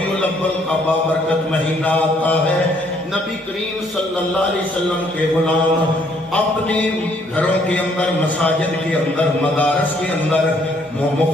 الاول کا بابرکت مہینہ آتا ہے نبی کریم صلی اللہ علیہ وسلم کے غلام اپنے گھروں کے اندر، مساجد کے اندر، مدارس کے اندر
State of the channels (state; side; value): normal; both; correlation 0.66